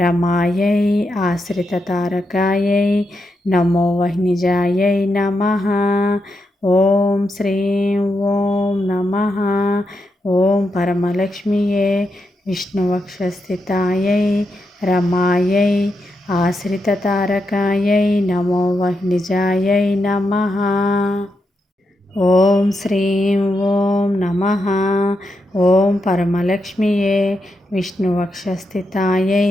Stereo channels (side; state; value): both; normal; correlation 0.84